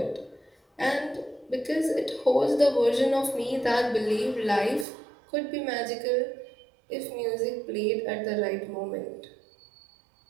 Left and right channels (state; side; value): drops out; left; at 4.9 s